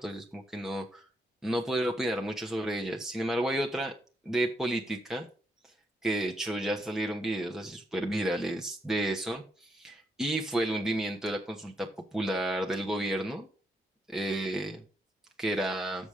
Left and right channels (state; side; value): normal; both; correlation 0.78